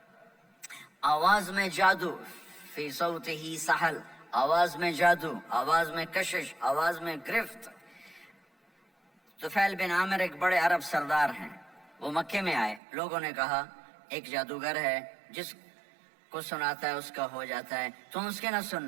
آواز میں جادو، فی صوتہ سحل، آواز میں جادو، آواز میں کشش، آواز میں گرفت۔ طفیل بن عامر ایک بڑے عرب سردار ہیں، وہ مکے میں آئے، لوگوں نے کہا ایک جادوگر ہے جس کو سناتا ہے اس کا ہو جاتا ہے، تم اس کے نہ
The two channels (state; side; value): drops out; left; at 12.8 s